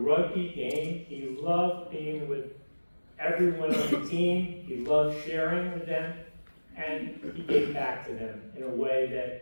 game. He loved being with everyone on the team. He loved sharing with them, and he gave back to them in a way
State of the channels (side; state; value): both; inverted; correlation -1.00